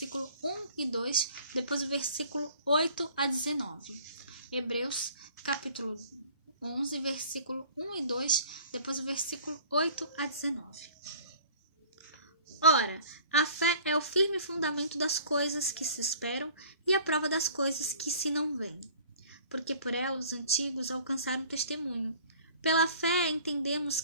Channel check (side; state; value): both; inverted; correlation -0.50